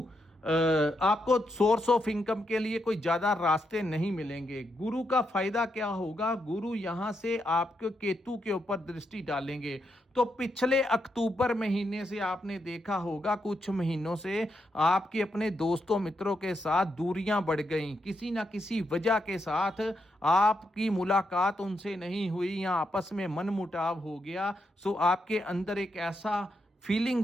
आपको सोर्स ऑफ इनकम के लिए कोई ज्यादा रास्ते नहीं मिलेंगे। गुरु का फायदा क्या होगा, गुरु यहां से आपके केतु के ऊपर दृष्टि डालेंगे तो पिछले अक्टूबर महीने से आपने देखा होगा, कुछ महीनों से आपके अपने दोस्तों मित्रों के साथ दूरियां बढ़ गई, किसी ना किसी वजह के साथ आपकी मुलाकात उनसे नहीं हुई या आपस में मनमुटाव हो गया। सो आपके अंदर एक ऐसा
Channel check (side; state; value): both; normal; correlation 0.82